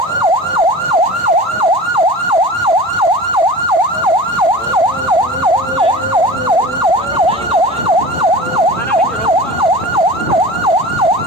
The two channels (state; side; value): normal; both; correlation 0.35